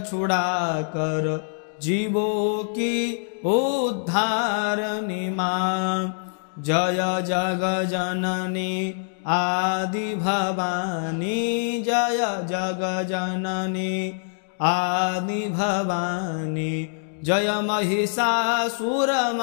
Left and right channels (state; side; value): silent; right; digital silence